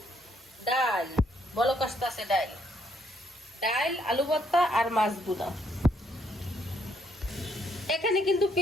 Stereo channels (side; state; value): both; normal; correlation 0.71